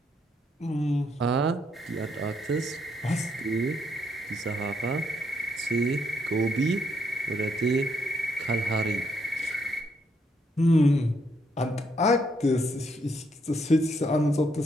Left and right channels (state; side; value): normal; both; correlation 0.74